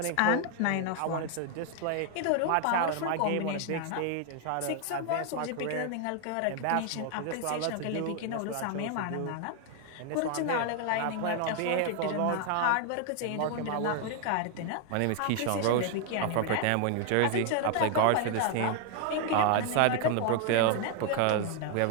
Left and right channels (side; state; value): both; different; correlation 0.00